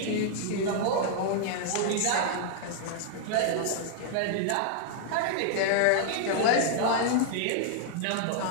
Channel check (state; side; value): different; both; correlation -0.01